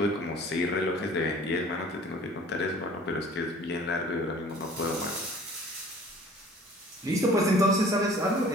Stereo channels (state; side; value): normal; both; correlation 0.49